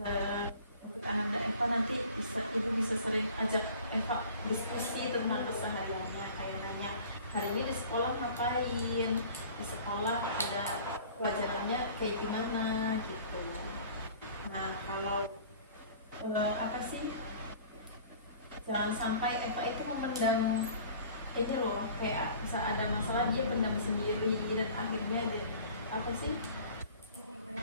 untuk Ananda Eva nanti ibu bisa sering ajak Eva diskusi tentang kesehariannya, kayak nanya hari ini di sekolah ngapain, di sekolah ada pelajarannya kayak gimana gitu. Nah, kalau apa sih, jangan sampai Eva itu memendam ini loh, kayak bisa ada masalah dia pendam sendiri dan akhirnya dia apa sih,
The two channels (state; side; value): inverted; both; correlation -0.46